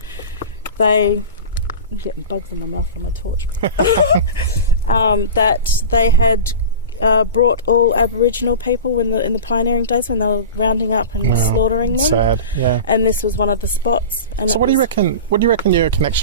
I'm getting bugs in my mouth from my torch. That they had brought all Aboriginal people in the pioneering days when they were rounding up and slaughtering them. Sad, yeah. And this was one of the spots. And so, what do you reckon? What do you reckon your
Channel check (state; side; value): inverted; both; correlation -0.32